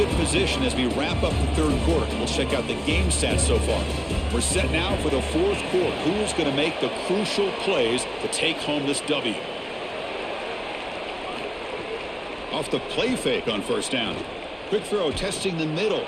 position as we wrap up the 3rd quarter. We'll check out the game stats so far. We're set now for the 4th quarter. Who's going to make the crucial plays to take home this W? Off the play fake on 1st down. Quick throw testing the middle.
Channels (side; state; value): both; identical; correlation 1.00